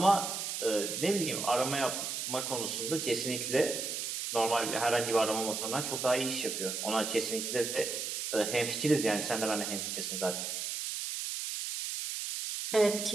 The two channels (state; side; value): noise; right; hiss, 3 dB below the sound